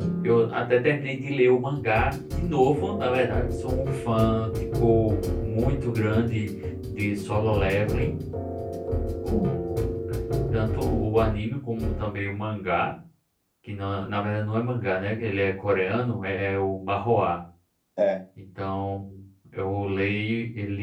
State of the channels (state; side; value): identical; both; correlation 1.00